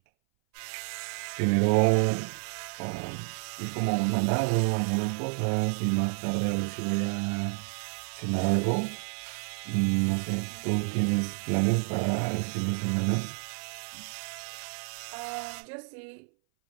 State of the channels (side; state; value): left; silent; 58 dB below the other